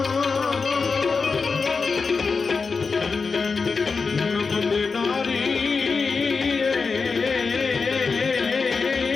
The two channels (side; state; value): right; quieter; 4.8 dB